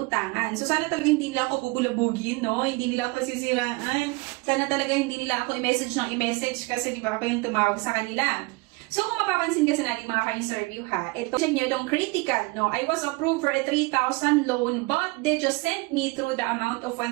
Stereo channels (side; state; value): left; quieter; 25.1 dB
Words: So, sana talaga hindi nila ako bubulabugin, no? Hindi nila ako sisiraan. Sana talaga hindi nila ako i-message ng i-message kasi di ba ako yung tumawag sa kanila. So, kung mapapansin kasi natin mga ka-interview ha, ito, check nyo itong critical, no? I was approved for a 3,000 loan but they just sent me through the amount of